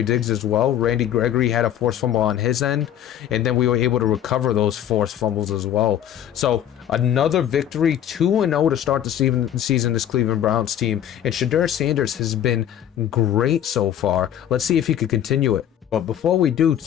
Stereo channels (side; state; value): right; quieter; 10.5 dB